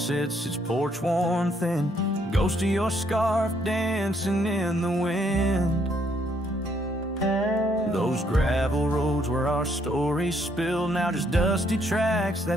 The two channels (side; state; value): both; normal; correlation 0.70